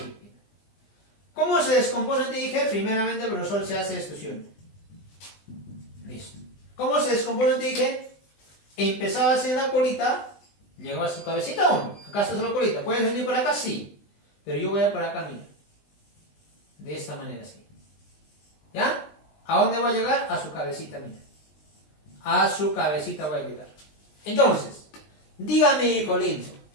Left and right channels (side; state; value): right; late; 20 ms